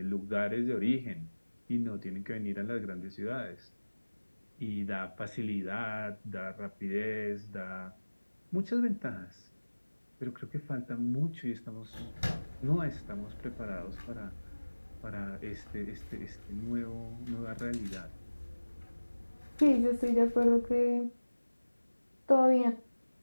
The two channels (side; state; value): both; inverted; correlation -1.00